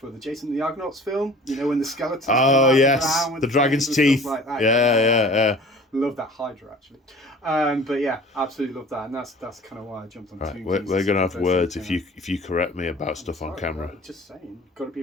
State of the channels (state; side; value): normal; both; correlation 0.45